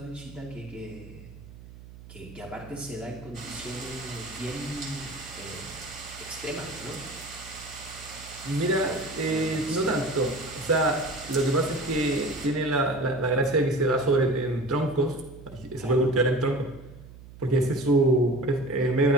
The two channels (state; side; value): noise; right; hum, 18 dB below the sound